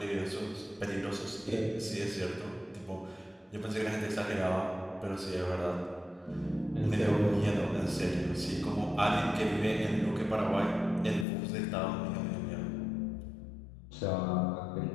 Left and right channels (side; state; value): right; drops out; at 11.2 s